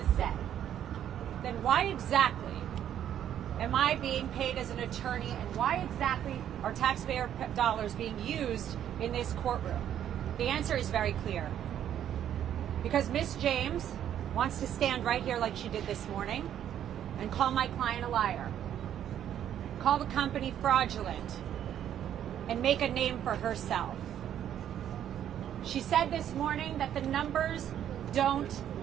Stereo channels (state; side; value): quieter; left; 10.3 dB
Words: say. Then why exactly am I being paid as an attorney, and why exactly are taxpayer dollars being used in this courtroom? The answer is very clear. Because Miss James wants to stand right here like she did this morning and call my client a liar, call the company fraudulent, and make a name for herself. She said this morning that the numbers don't